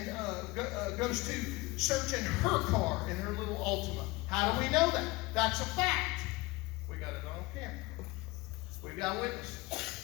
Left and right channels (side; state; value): right; quieter; 22.4 dB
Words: search in her car, in her little Altima. How do we know that? That's a fact. We got it on camera. We got